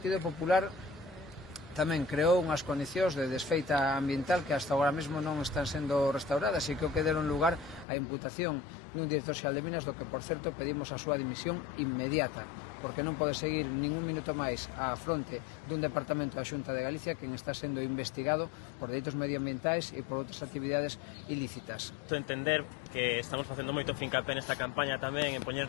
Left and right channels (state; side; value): drops out; right; at 7.9 s